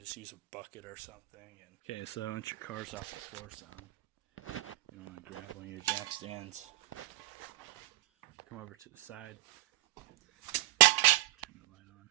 just use a bucket or something. Okay, so once your car's off the floor some, you don't want to grab one of your jack stands. Come over to the side, turn the light on,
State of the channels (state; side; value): quieter; left; 18.9 dB